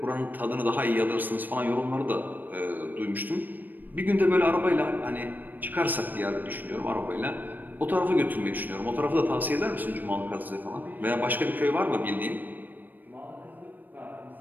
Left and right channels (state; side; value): late; left; 0.089 ms